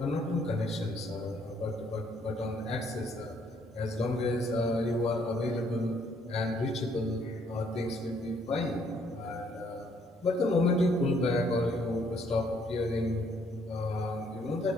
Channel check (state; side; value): normal; both; correlation 0.67